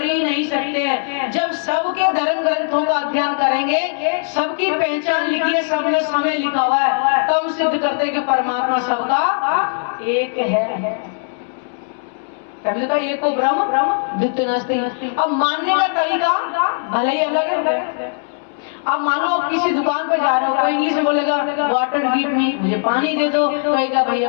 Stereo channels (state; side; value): silent; right; 67 dB below the other